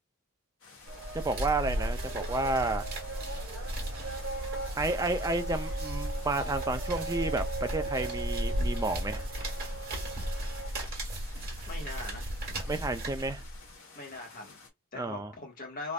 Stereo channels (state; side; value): normal; both; correlation 0.51